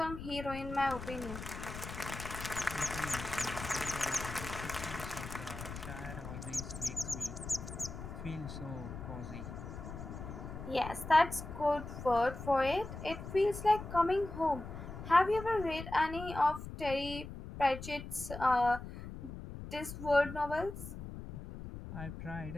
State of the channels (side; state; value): left; noise; rumble, 9 dB below the sound